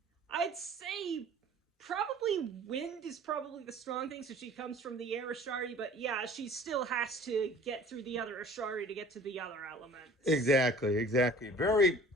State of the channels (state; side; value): normal; both; correlation 0.47